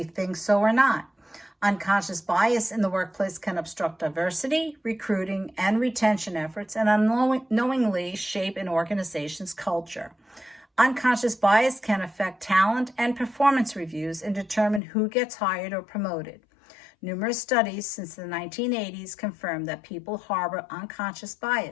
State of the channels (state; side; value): drops out; right; at 14.8 s